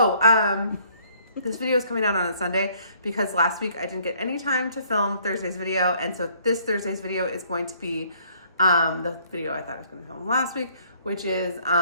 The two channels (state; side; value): inverted; both; correlation -0.63